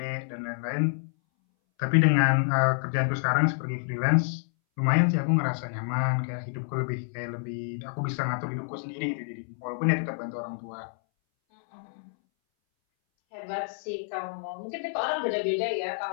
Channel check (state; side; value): silent; right; 59 dB below the other